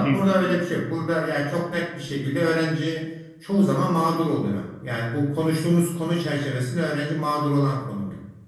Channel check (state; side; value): identical; both; correlation 1.00